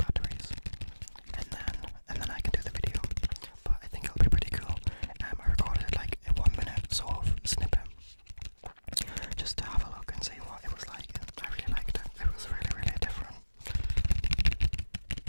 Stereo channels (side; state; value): both; inverted; correlation -1.00